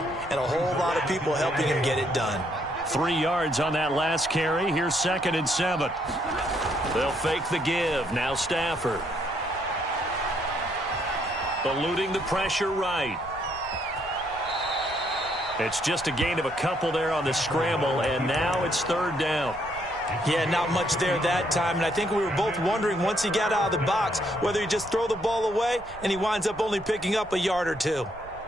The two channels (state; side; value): noise; right; rumble, 20 dB below the sound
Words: and a whole lot of people helping him get it done. 3 yards on that last carry. Here's 2nd and 7. They'll fake the give. Now Stafford. Eluding the pressure right. It's just a gain of a couple there on the scramble, and now it's 3rd down. Yeah, not much there that time, and I think we were both wondering once he got out of the box whether he just throw the ball away and he winds up only picking up a yard or two.